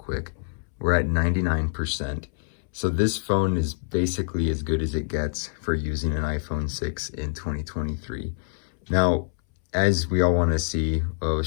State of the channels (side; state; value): right; silent; 61 dB below the other